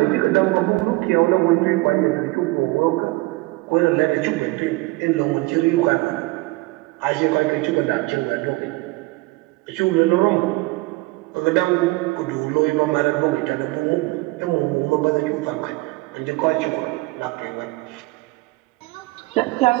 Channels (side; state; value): left; quieter; 22.4 dB